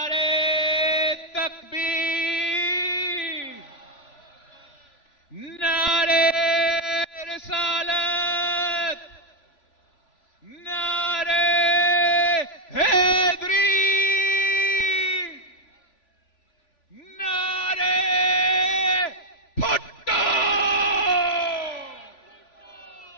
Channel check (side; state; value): right; late; 3.5 ms